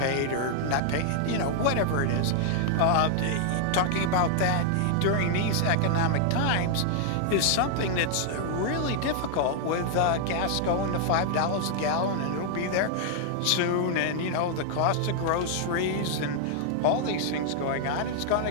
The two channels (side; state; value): both; different; correlation -0.01